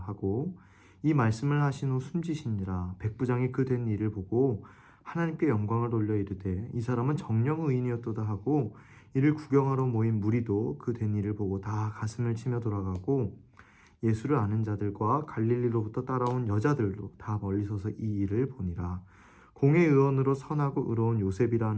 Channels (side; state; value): both; identical; correlation 1.00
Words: 하고 이 말씀을 하신 후 숨지시니라. 백부장이 그 된 일을 보고 하나님께 영광을 돌려 이르되 이 사람은 정령 의인이었도다 하고 이를 구경하러 모인 무리도 그 된 일을 보고 다 가슴을 치며 돌아가고 예수를 아는 자들과 갈릴리로부터 따라온 여자들도 다 멀리 서서 이 일을 보니라. 공회 의원으로 선하고 의로운